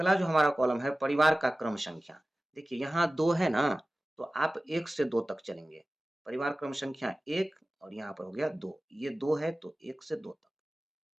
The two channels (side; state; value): both; normal; correlation 0.96